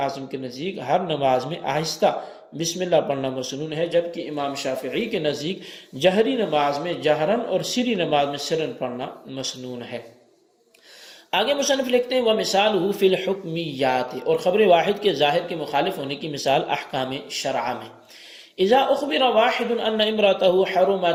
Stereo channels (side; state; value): both; identical; correlation 1.00